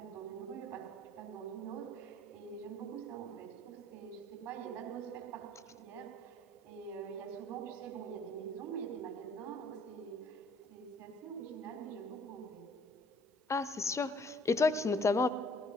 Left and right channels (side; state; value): both; normal; correlation 0.58